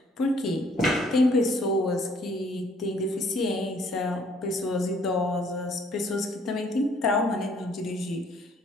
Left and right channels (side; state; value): both; normal; correlation 0.62